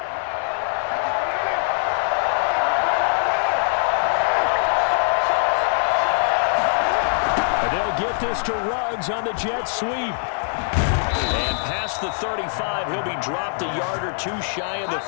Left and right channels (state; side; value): silent; right; digital silence